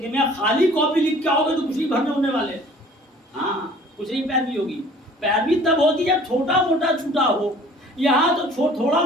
میں خالی کاپی لکھ کے آؤ گے تو کچھ نہیں بھرنے ہونے والے. ہاں کچھ نہیں پیروی ہوگی. پیروی تب ہوتی جب چھوٹا موٹا چھوٹا ہو. یہاں تو تھوڑا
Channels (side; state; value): both; normal; correlation 0.51